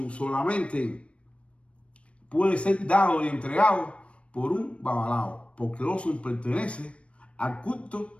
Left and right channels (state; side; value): late; right; 0.061 ms